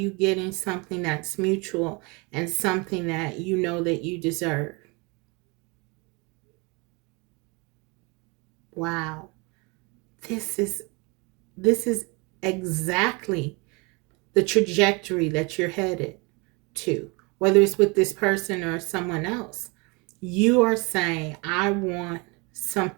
getting something that's mutual and something that you know that you deserve. Wow. This is exactly the trajectory that you're headed to, whether it's with this person or someone else. You are saying, I want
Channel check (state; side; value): quieter; left; 28.7 dB